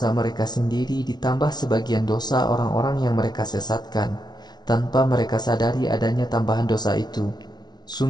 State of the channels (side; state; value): right; late; 0.20 ms